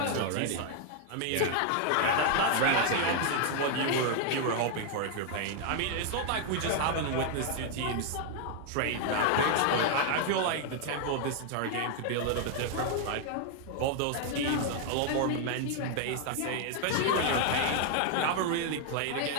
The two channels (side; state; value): both; different; correlation 0.00